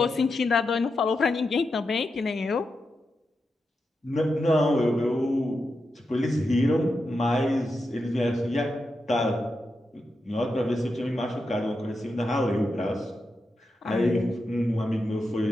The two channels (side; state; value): both; normal; correlation 0.87